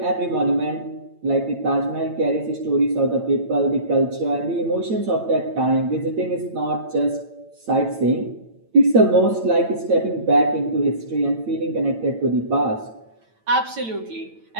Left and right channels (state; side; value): late; left; 8.9 ms